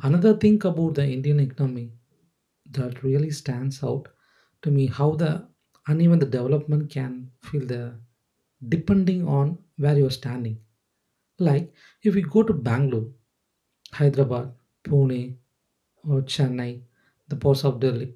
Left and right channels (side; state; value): both; identical; correlation 1.00